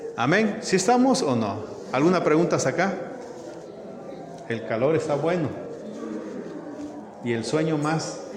Amén. ¿Sí estamos o no? ¿Alguna pregunta acá? El calor está bueno. Y el sueño más.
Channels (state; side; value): identical; both; correlation 1.00